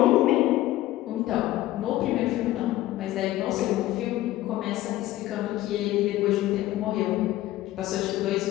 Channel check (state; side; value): quieter; right; 15.6 dB